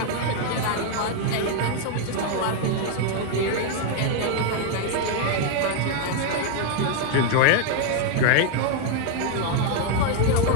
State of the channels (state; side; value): different; both; correlation 0.00